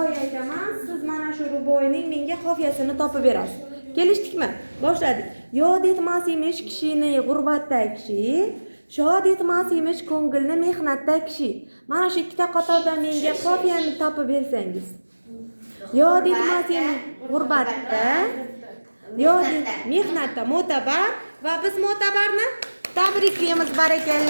aytaman, siz mana shu ruboiyning menga qofiyasini topib berasiz. Kelishdikmi? Boshladik. Yod etmas emish kishini g'urbatda kishi, shod etmas emish ko'ngilni mehnatda kishi. Mana shu ikkita qatordan menga qofiyani topib bersangiz. Yod etmas emish g'urbatda, yod mehnatda mo'tabar va biz mo'tabarni tabriklaymiz,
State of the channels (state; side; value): inverted; both; correlation -1.00